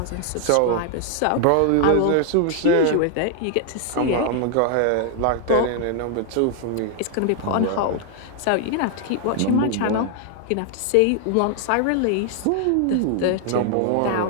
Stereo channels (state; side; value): different; both; correlation 0.00